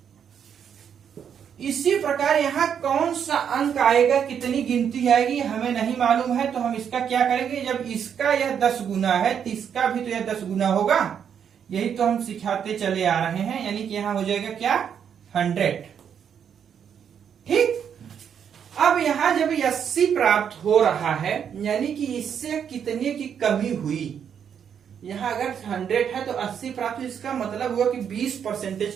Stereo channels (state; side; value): quieter; left; 8.0 dB